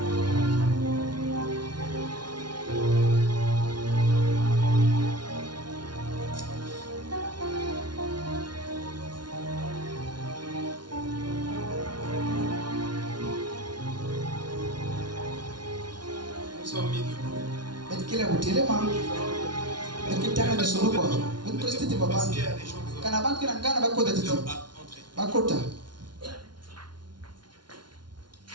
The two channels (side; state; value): left; late; 0.71 ms